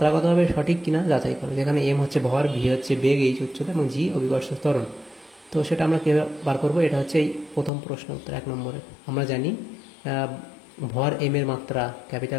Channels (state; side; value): drops out; right; at 7.7 s